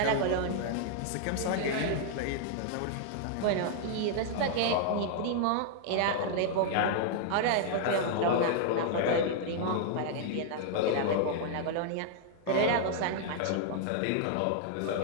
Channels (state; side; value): different; both; correlation -0.01